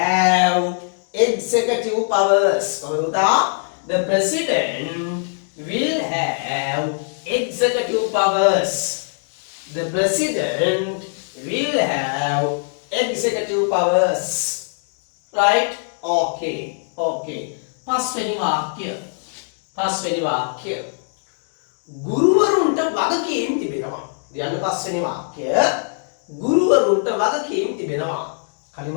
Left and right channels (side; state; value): right; silent; 65 dB below the other